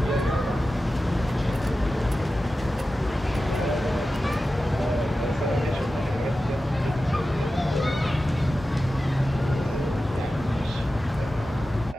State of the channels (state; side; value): normal; both; correlation 0.94